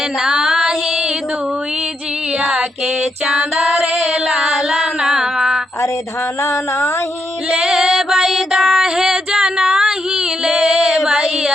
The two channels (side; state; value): both; normal; correlation 0.80